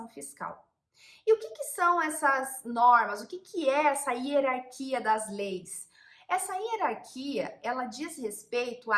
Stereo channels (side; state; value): both; identical; correlation 1.00